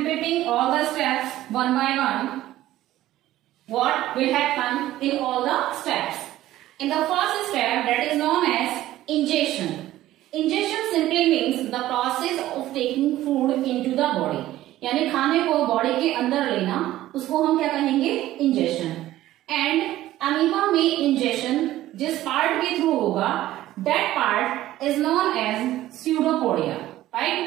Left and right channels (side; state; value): left; quieter; 14.7 dB